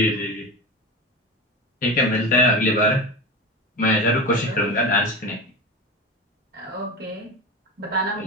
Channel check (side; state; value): both; normal; correlation 0.25